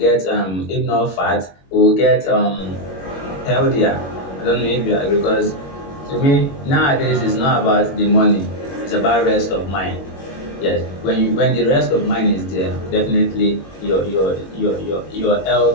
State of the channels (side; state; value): right; late; 21 ms